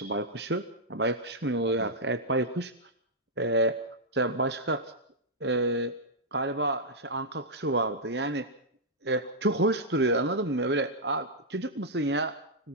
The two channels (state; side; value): normal; both; correlation -0.08